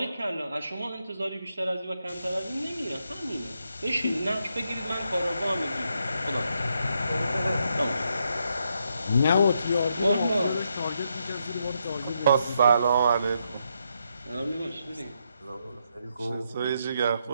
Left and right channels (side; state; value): both; inverted; correlation -0.80